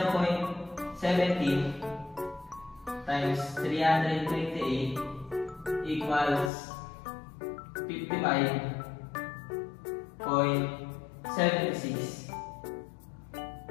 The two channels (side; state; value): right; drops out; at 6.5 s